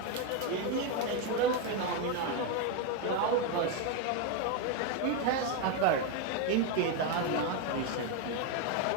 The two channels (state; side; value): different; both; correlation 0.02